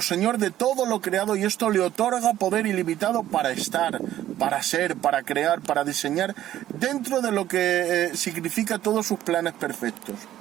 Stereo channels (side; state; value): left; quieter; 12.7 dB